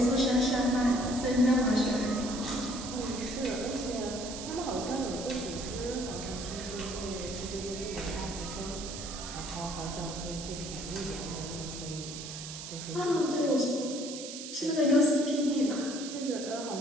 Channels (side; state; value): right; noise; hiss, 9 dB below the sound